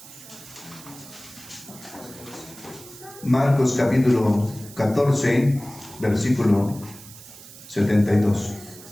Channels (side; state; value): right; noise; hiss, 18 dB below the sound